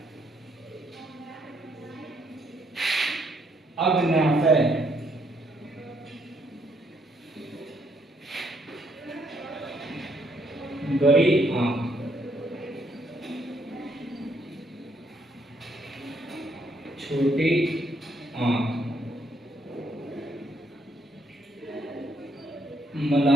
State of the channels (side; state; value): both; normal; correlation 0.71